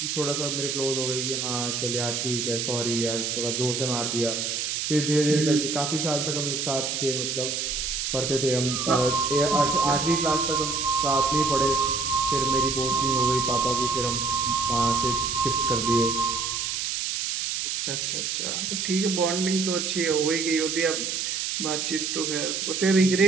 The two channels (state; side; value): noise; right; hiss, 2 dB below the sound